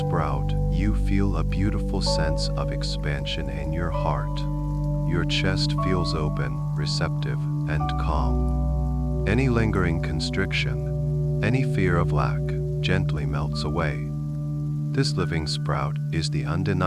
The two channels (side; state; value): both; identical; correlation 1.00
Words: you feel a beautiful sense of expansion in your heart. Your chest feels open, receptive, and calm. Any lingering constriction, any fear of lack, gently melts away. This living sprout is the